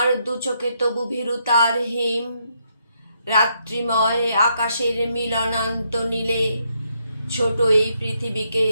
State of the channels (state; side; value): inverted; both; correlation -0.76